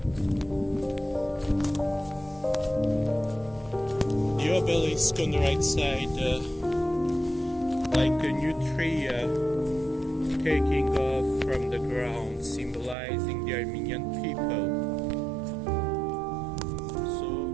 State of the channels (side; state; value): left; drops out; at 13.0 s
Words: The obelisk on the right side, like a new tree taking off from the ground, symbolizing the Armenian people. So